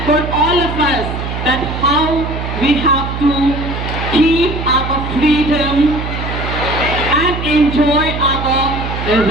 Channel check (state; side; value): noise; right; hum, 5 dB below the sound